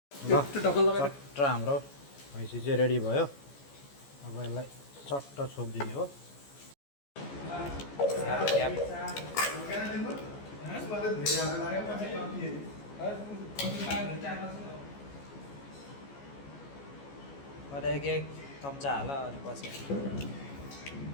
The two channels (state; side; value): late; right; 14 ms